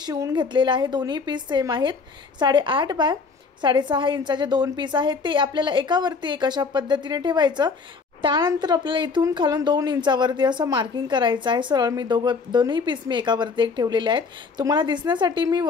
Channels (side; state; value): right; quieter; 4.8 dB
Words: घेतलेला आहे। दोन्ही पीस सेम आहेत। 8.5 बाय 6.5 इंचाचे 2 पीस आहेत ते आपल्याला एकावरती एक अशा पद्धतीने ठेवायचं। त्यानंतर आपल्याला इथून खालून 2 इंचावरती असं मार्किंग करायचं आहे। सरळ मी दोन्ही पीस मी एकावरती एक ठेवलेले आहेत। तुम्हाला दिसण्यासाठी मी